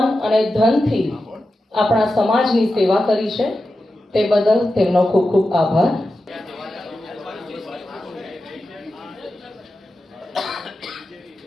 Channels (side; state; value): both; normal; correlation 0.91